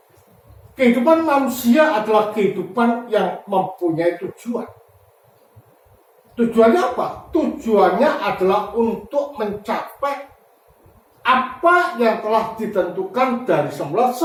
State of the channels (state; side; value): identical; both; correlation 1.00